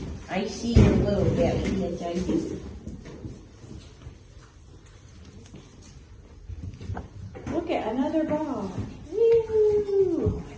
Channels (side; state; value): both; identical; correlation 1.00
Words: I see your little belly, yes I do. Look at another ball. Woo!